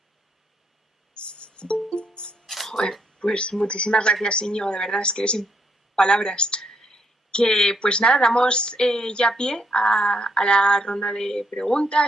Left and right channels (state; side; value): normal; both; correlation 0.74